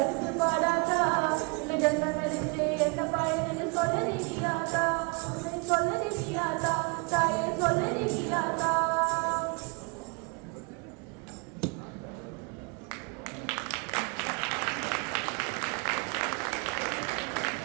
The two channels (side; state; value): left; quieter; 33.5 dB